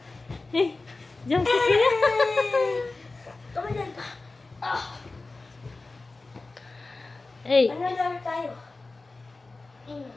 Hey! Diyan si Kuya! Tumalan pa. Hey! Ano laro tayo?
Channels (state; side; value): quieter; right; 3.5 dB